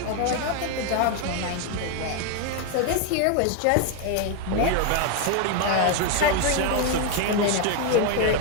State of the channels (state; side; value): different; both; correlation 0.01